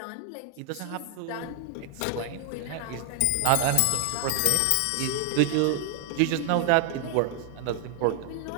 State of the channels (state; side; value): different; both; correlation 0.00